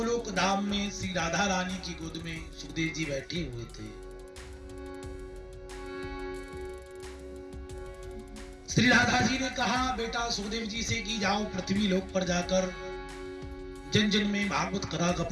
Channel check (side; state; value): both; identical; correlation 1.00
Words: धाम में श्री राधा रानी की गोद में सुखदेव जी बैठे हुए थे। श्री राधा जी ने कहा बेटा सुखदेव जी से कि जाओ पृथ्वी लोक पर जाकर जन जन में भागवत कथा का